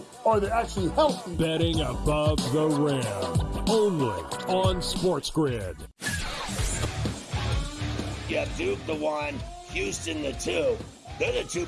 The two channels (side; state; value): both; identical; correlation 1.00